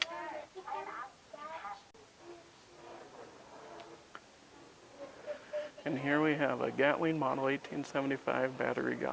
And here we have a Gatling Model 1875 battery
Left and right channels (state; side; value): identical; both; correlation 1.00